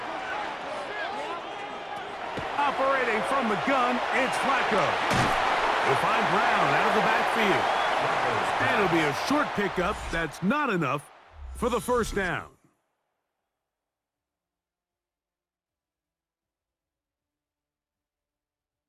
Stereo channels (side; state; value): both; identical; correlation 1.00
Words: Operating from the gun, it's Flacco. He'll find Brown out of the backfield. And it'll be a short pickup that's not enough for the first down.